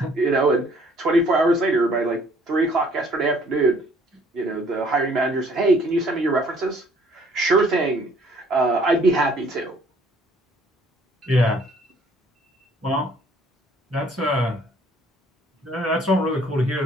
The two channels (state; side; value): normal; both; correlation 0.60